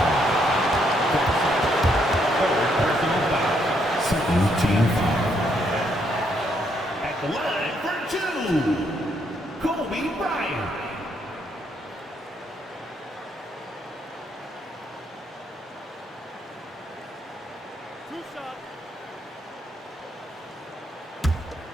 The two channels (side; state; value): both; normal; correlation 0.74